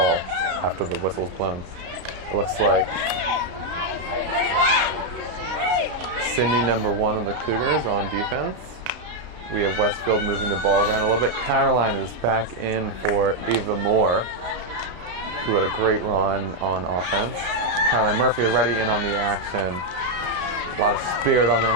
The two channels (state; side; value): late; left; 32 ms